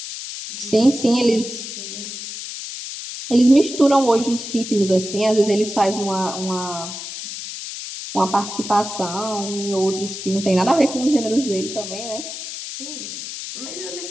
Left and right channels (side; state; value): left; noise; hiss, 9 dB below the sound